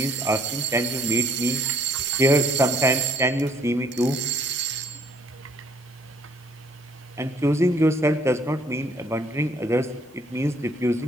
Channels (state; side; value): normal; both; correlation 0.63